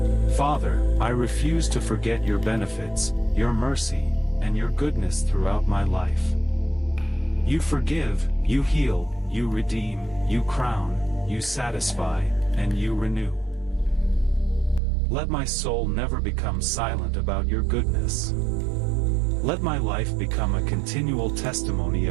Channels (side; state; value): left; drops out; at 14.8 s